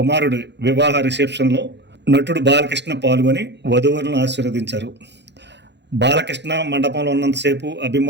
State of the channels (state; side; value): late; left; 0.50 ms